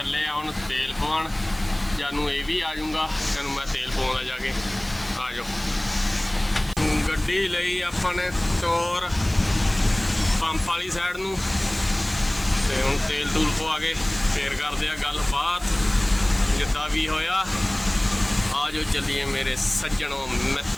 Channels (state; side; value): noise; right; hiss, 21 dB below the sound